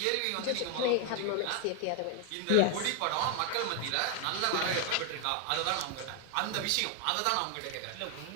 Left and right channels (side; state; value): both; different; correlation 0.01